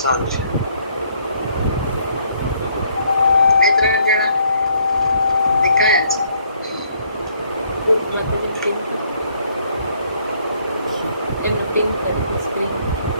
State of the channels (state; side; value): inverted; both; correlation -0.66